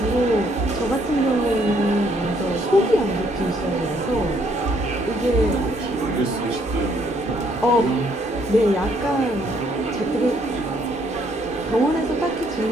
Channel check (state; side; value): normal; both; correlation 0.68